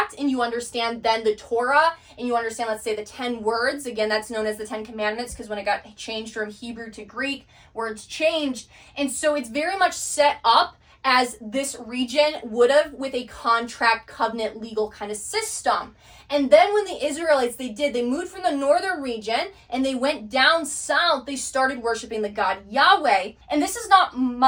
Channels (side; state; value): both; identical; correlation 1.00